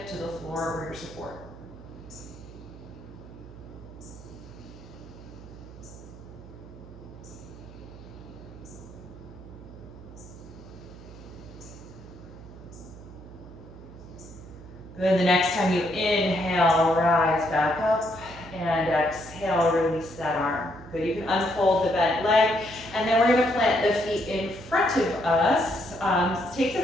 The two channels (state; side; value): noise; right; hum, 17 dB below the sound